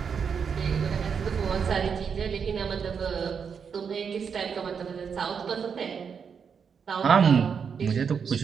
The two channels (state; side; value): quieter; left; 6.6 dB